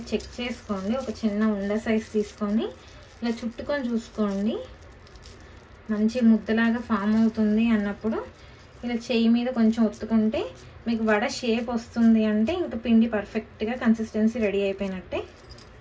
చెక్ చేసుకోండి. ఒక చిన్న ఉండ సైజ్ తీసుకొని ఇలా చుట్టుకొని చూసుకోండి. మంచి ముద్దలాగా ఫామ్ అవుతుంది అన్నప్పుడు ఇలా చెయ్యి మీద కొంచెం ఒత్తుకుంటే మీకు వడ షేప్ వస్తుంది అంటే ఇంకా పిండి పర్ఫెక్ట్గా కన్సిస్టెన్సీ రెడీ అయిపోయినట్టే.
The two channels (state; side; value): identical; both; correlation 1.00